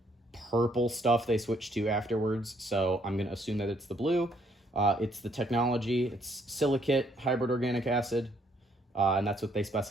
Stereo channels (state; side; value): normal; both; correlation 0.68